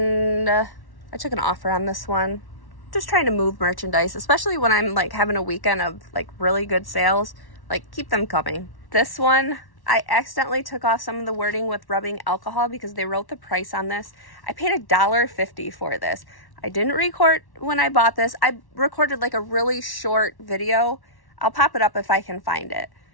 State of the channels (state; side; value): late; right; 1.1 ms